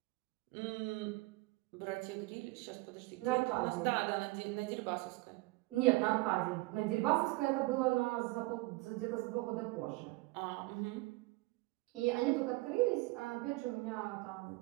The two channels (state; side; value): quieter; left; 22.8 dB